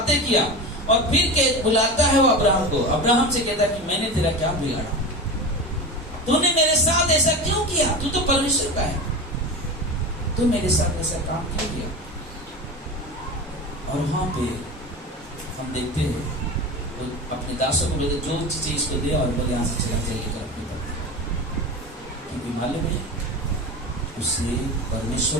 किया और फिर बुलाता है वो अब्राहम को। अब्राहम से कहता है कि मैंने तेरा क्या बिगाड़ा, तूने मेरे साथ ऐसा क्यों किया? तू तो परमेश्वर का है, तू मेरे साथ ऐसा काम क्यों किया? और वहां पे हम देखते हैं तो अपने दासों को बोले जो चीजें इसको दे और बोले यहाँ से चला जाइएगा अपनी पत्नी, क्योंकि मालूम है उसने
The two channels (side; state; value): both; normal; correlation 0.27